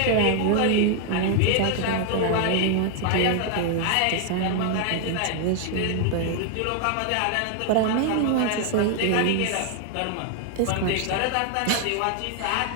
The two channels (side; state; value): both; different; correlation 0.00